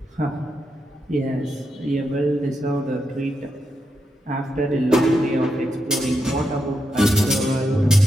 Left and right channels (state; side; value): normal; both; correlation 0.84